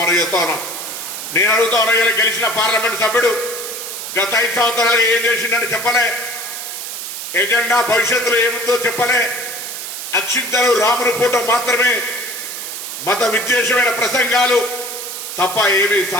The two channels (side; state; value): right; noise; hiss, 7 dB below the sound